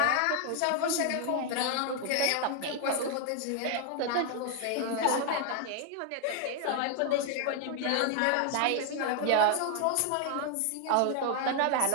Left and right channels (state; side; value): different; both; correlation 0.00